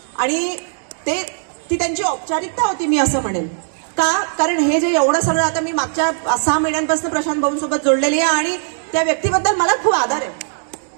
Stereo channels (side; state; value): left; silent; digital silence